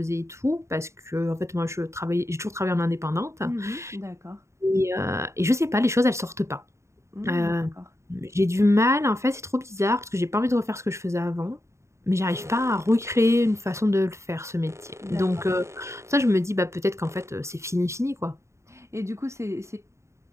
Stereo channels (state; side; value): late; left; 0.14 ms